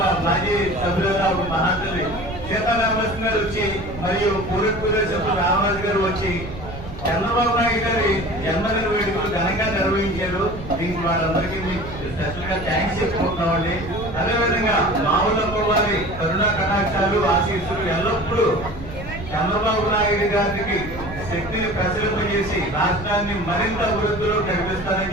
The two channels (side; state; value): right; noise; rumble, 12 dB below the sound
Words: మాజీ సభ్యులుగా మహాతల్లి సీతారామలక్ష్మి గారు వచ్చి మరియు పూర్వ సభ్యులు రామరాజు గారు వచ్చి చంద్రబాబు నాయుడు గారి జన్మదిన వేడుకలు ఘనంగా నిర్వహించారు. దీనికి వాళ్ళందరికీ స్పెషల్ గా థ్యాంక్స్ చెప్పుకుంటున్నామండి. అదేవిధంగా మావులమ్మ వారి కరుణా కటాక్షాలు ఆశీస్సులు ఎల్లప్పుడూ చంద్రబాబు నాయుడు గారికి శక్తిని ప్రసరింపజేసి రాష్ట్రాన్ని మరింత అభివృద్ధిలో నడిపిస్తారని